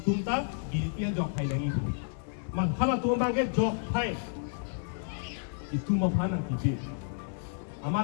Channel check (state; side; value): silent; right; digital silence